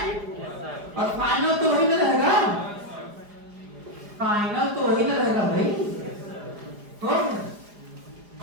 और फाइनल तो वही ना रहेगा, फाइनल तो वही ना रहेगा भाई, तो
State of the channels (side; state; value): left; late; 4.9 ms